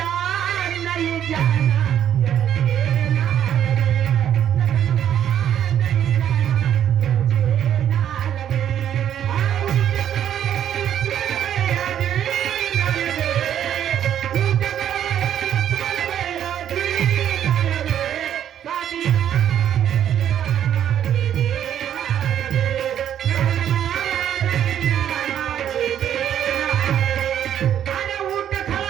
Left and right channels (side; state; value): left; quieter; 10.1 dB